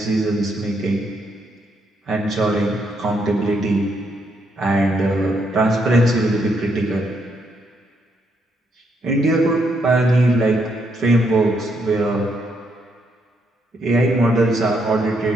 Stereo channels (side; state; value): both; normal; correlation 0.76